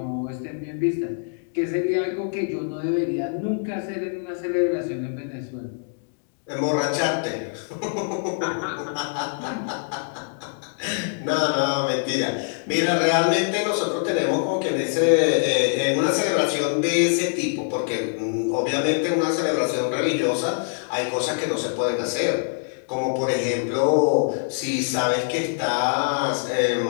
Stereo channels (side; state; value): right; silent; digital silence